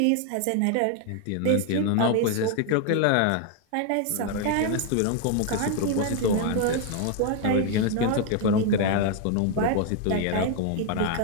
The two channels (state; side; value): different; both; correlation 0.00